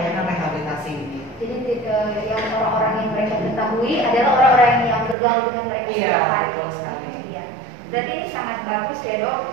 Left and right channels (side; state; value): left; drops out; at 5.2 s